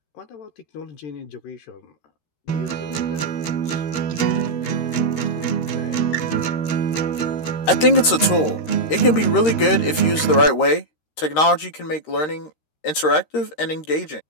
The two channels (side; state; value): right; late; 13 ms